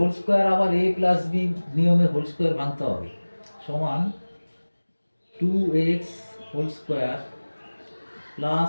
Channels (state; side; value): inverted; both; correlation -1.00